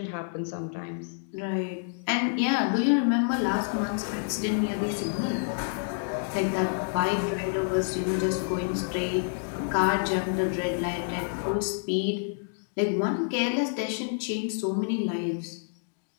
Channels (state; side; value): silent; right; digital silence